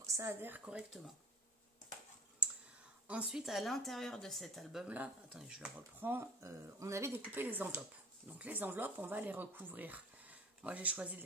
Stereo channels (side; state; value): both; normal; correlation 0.45